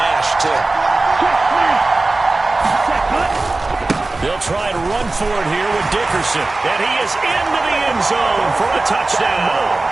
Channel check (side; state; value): left; quieter; 3.2 dB